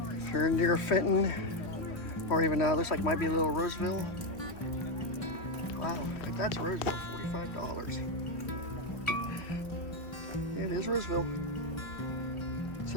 If you're near Fenton, or even looks like it might be a little Roseville. Wow, if that's Roseville, $45. It is Roseville. It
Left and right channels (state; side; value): late; right; 3.1 ms